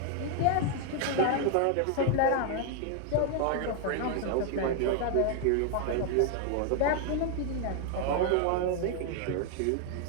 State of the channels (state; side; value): different; both; correlation 0.00